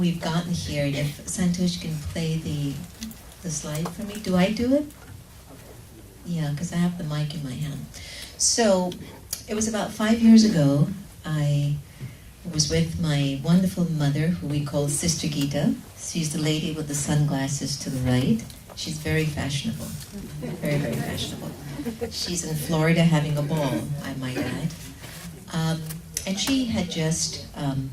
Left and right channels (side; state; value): both; identical; correlation 1.00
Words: gotten here. And if Santosh can play the slide for me. Do I do it? Yeah, because I have the mic in my hand. So it was about 5 years ago. I was with my wonderful mother, who we call Sister Gita. She's the lady with the sunglasses to the right. She's very fashionable. Very, very fashionable. She's in Florida having a ball, I might add. And she had just